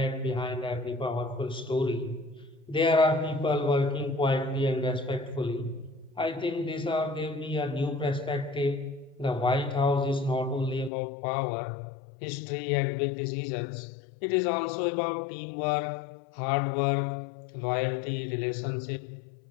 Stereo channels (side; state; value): right; drops out; at 10.9 s